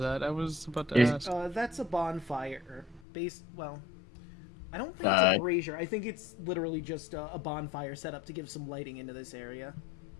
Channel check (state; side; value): drops out; right; at 3.1 s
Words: I was about to Is- ask. That's a bonfire. Well, I don't think it's a brazier. I think it's literally just a bonfire set up to give some lighting into this area.